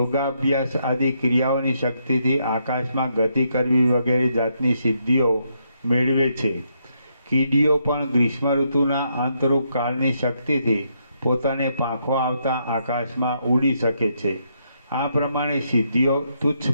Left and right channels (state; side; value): inverted; both; correlation -0.78